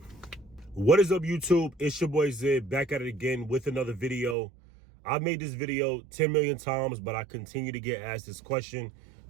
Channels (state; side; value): drops out; left; at 4.4 s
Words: what is up, YouTube? It's your boy Zid, back at it again with another video. I've made this video 10 million times, but I continue to get asked this question.